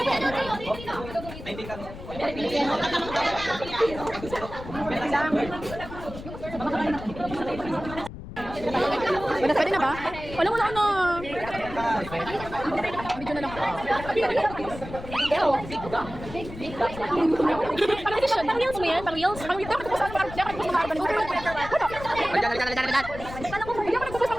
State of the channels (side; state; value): left; noise; rumble, 12 dB below the sound